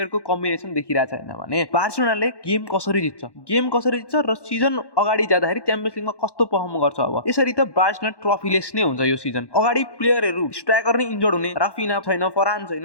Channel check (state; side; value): late; right; 1.1 ms